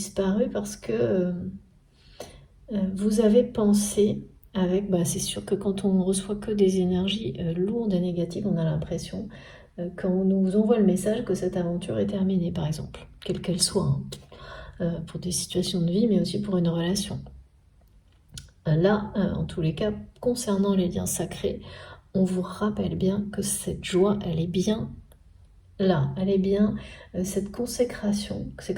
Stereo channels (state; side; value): identical; both; correlation 1.00